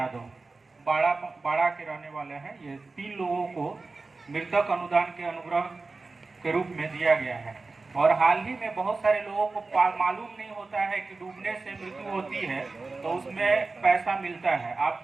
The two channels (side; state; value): left; quieter; 3.7 dB